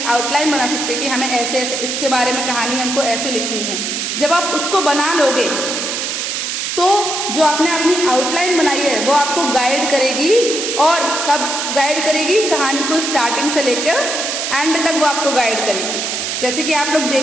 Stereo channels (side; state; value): right; noise; hiss, 2 dB below the sound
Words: आउटलाइन बना सकते हैं कि हमें ऐसे ऐसे इसके बारे में कहानी हमको ऐसे लिखनी है। जब आप उसको बना लोगे तो जो आपने अपनी आउटलाइन बनाई है वो आपको गाइड करेगी। और कब गाइड करेगी? कहानी को स्टार्टिंग से लेकर एंड तक वो आपको गाइड करेगी। जैसे कि आप लोग